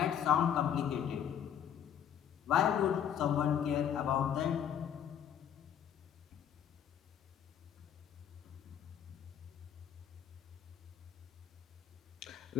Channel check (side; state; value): right; quieter; 9.2 dB